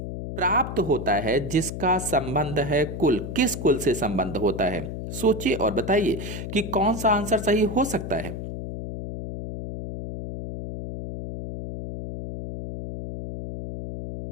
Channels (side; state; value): left; noise; hum, 7 dB below the sound